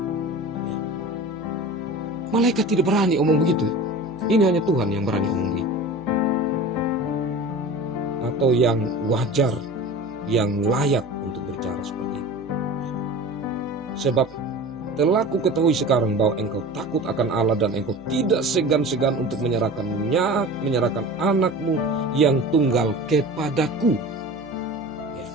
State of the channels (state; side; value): noise; right; hum, 24 dB below the sound